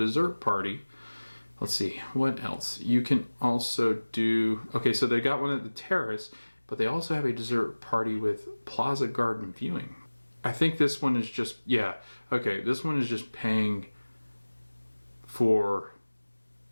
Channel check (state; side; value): inverted; both; correlation -1.00